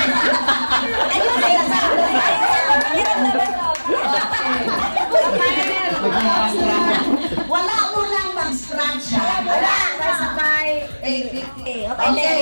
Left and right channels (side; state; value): both; inverted; correlation -1.00